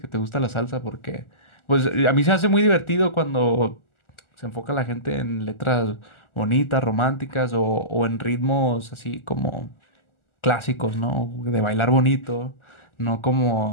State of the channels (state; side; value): late; right; 1.4 ms